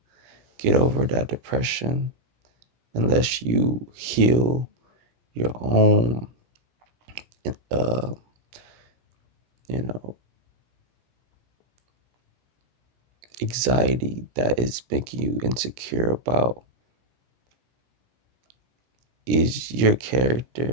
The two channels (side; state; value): left; late; 17 ms